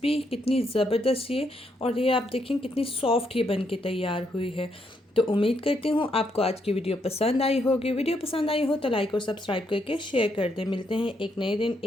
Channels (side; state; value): both; normal; correlation 0.77